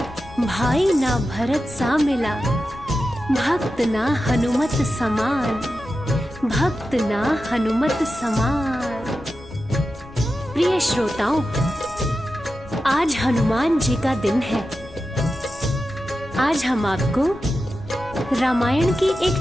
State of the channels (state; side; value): noise; left; rumble, 19 dB below the sound